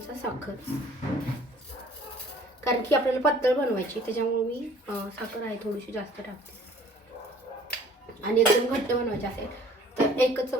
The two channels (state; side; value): normal; both; correlation 0.53